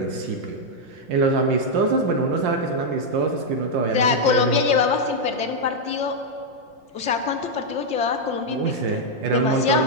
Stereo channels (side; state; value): left; late; 5.7 ms